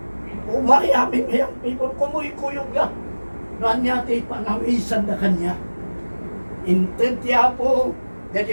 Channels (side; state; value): both; inverted; correlation -1.00